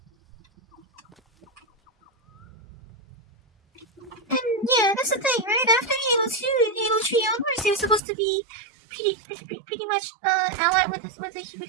And yeah, that's the thing, right? After Halo 2 and Halo 3 onwards, they were supposed to be pretty much allied with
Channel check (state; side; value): drops out; left; at 8.0 s